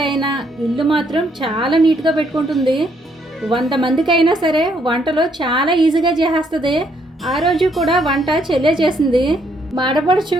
ఇల్లు మాత్రం చాలా నీట్‌గా పెట్టుకుంటుంది. 100 మందికైనా సరే వంటలో చాలా ఈజీగా చేసేస్తది. ఆ రోజు కూడా వంట చెల్లే చేసింది. మాడపడుచు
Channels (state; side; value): normal; both; correlation 0.71